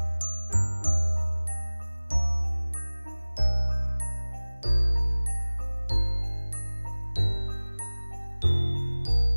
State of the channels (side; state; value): both; inverted; correlation -1.00